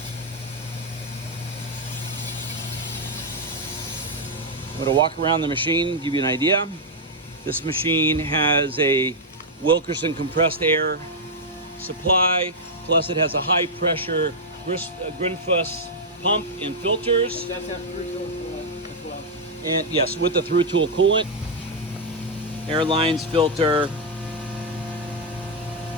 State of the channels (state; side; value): normal; both; correlation -0.02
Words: I'm gonna walk around the machine, give you an idea. This machine has a Wilkerson compressed air supply, plus it has a high pressure Grinfuss pump and filters. That's have through tool coolant as well. And yes, with the through tool coolant, air lines, filter,